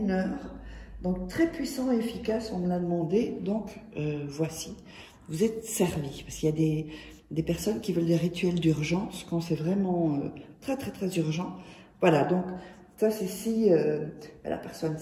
heure, donc très puissant et efficace, on me l'a demandé, donc voici, vous êtes servis, parce qu'il y a des personnes qui veulent des rituels d'urgence quand c'est vraiment très urgent. Voilà, donc ça c'est si la personne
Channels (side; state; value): both; identical; correlation 1.00